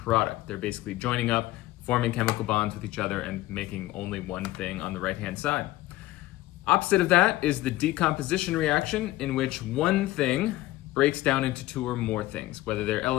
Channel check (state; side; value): quieter; right; 16.9 dB